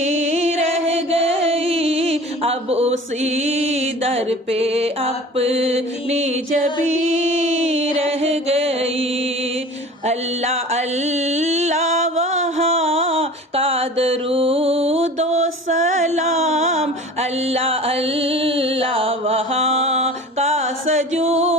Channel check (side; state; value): both; normal; correlation 0.40